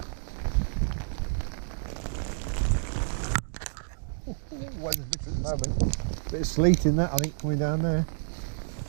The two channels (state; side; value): silent; left; digital silence